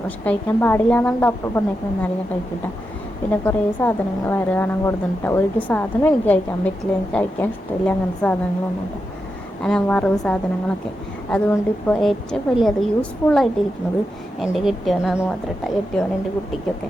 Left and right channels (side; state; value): both; normal; correlation 0.88